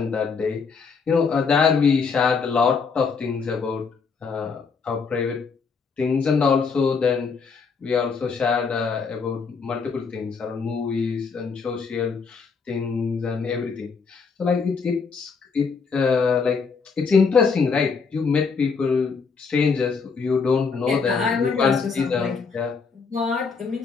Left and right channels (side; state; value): right; quieter; 5.3 dB